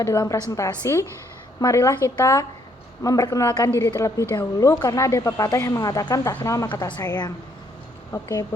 dalam presentasi, marilah kita memperkenalkan diri terlebih dahulu karena ada pepatah yang mengatakan tak kenal maka tak sayang. Oke,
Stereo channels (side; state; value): both; normal; correlation 0.69